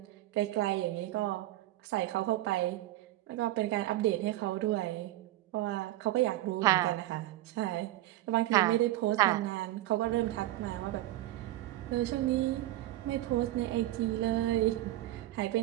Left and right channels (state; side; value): quieter; left; 15.6 dB